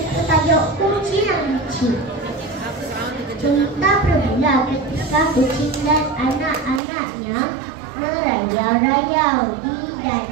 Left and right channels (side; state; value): left; drops out; at 6.8 s